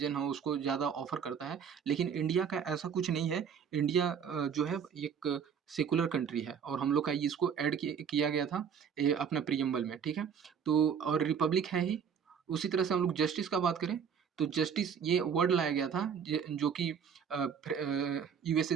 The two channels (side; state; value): left; quieter; 7.3 dB